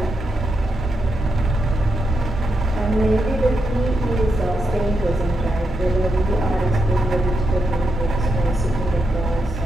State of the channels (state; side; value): normal; both; correlation 0.84